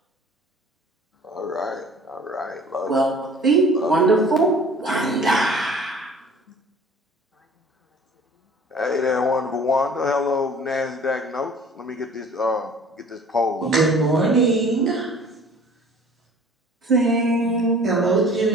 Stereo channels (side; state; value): both; normal; correlation 0.48